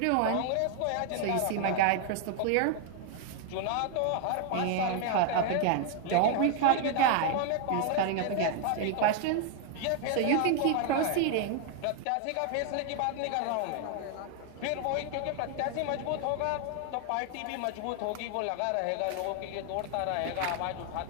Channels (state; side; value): different; both; correlation 0.00